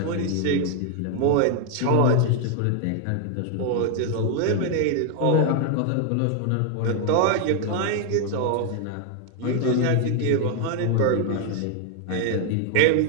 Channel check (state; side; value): different; both; correlation 0.00